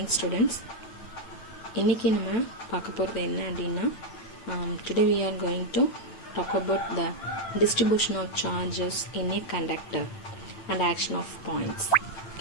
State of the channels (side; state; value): right; late; 9.0 ms